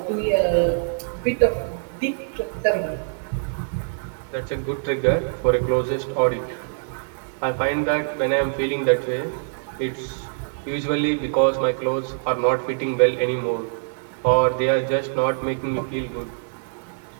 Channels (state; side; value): silent; left; digital silence